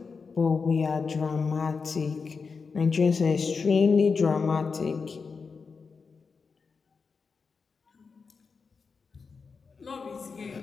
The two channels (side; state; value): right; quieter; 5.0 dB